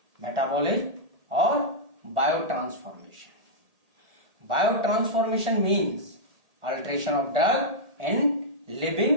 मेटाबॉलिज्म और bio transformation. Bio transformation means alteration of drug in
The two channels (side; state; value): left; late; 1.8 ms